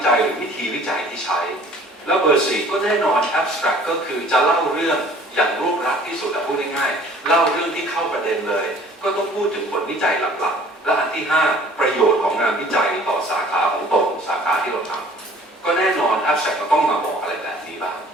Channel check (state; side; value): normal; both; correlation 0.52